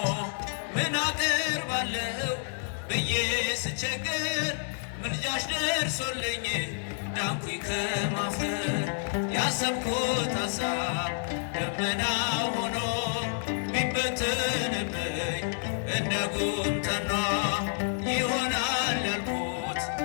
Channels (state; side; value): silent; right; 58 dB below the other